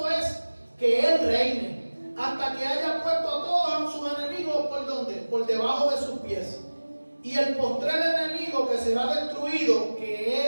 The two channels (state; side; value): inverted; both; correlation -1.00